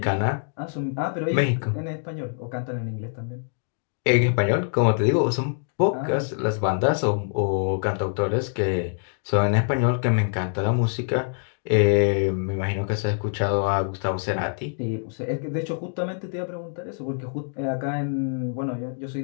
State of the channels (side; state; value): right; silent; digital silence